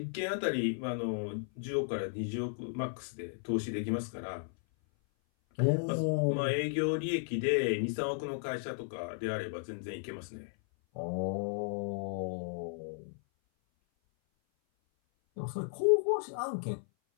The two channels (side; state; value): right; silent; 55 dB below the other